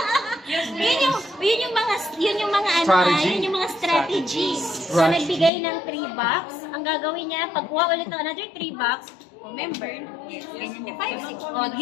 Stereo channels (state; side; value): drops out; right; at 5.5 s